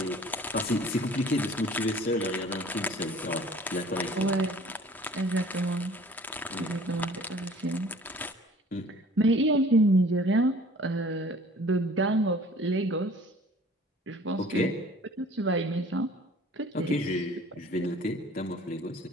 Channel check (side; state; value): both; normal; correlation 0.50